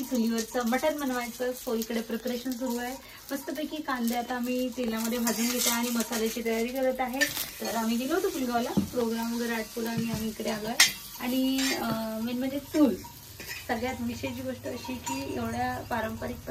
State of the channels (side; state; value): both; identical; correlation 1.00